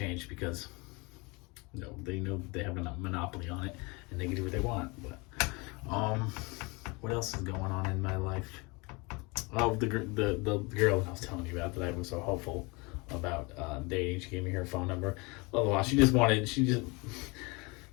because they know they have a monopoly on it and they can do what they want. But what else is going on in my life? Oh, the girl I was telling you about that I was so hopeful about dating. She gave me her phone number. Blah, blah, blah. She's not interested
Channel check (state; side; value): quieter; right; 27.4 dB